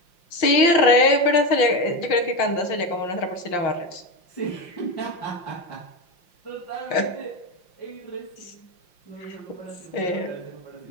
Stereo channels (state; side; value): late; right; 5.7 ms